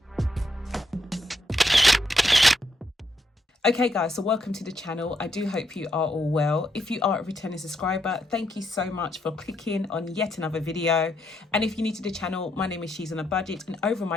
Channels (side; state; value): both; normal; correlation 0.78